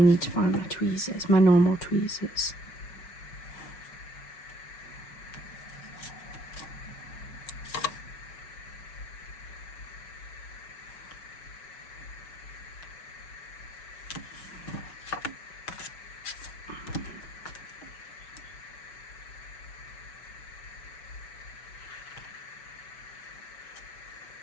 to find my tweezers, my normal tweezers.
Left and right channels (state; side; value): late; right; 6.1 ms